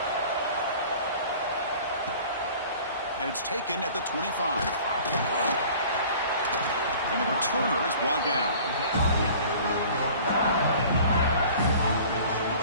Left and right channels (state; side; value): inverted; both; correlation -0.46